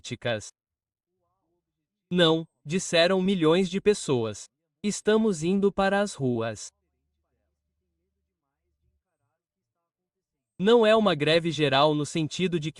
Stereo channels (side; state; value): both; identical; correlation 1.00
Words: Não, disseram milhões de pessoas. Estamos indo para as ruas. Não é uma greve geral no sentido de